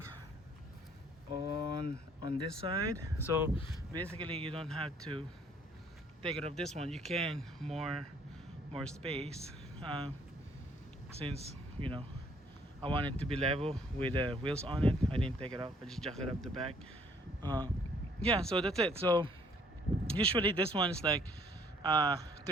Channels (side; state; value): both; normal; correlation 0.62